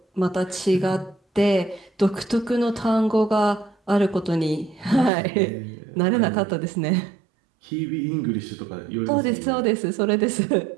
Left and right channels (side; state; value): left; drops out; at 5.1 s